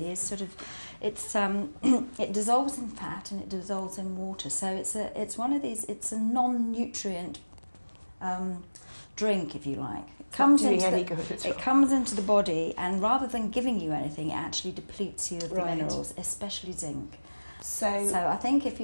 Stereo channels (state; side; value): inverted; both; correlation -1.00